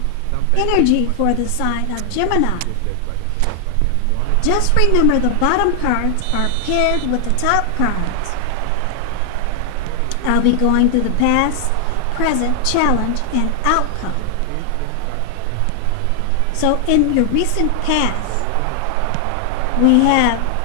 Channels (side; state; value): both; different; correlation 0.00